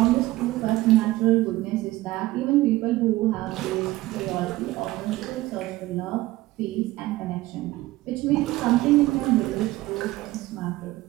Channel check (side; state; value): left; quieter; 18.0 dB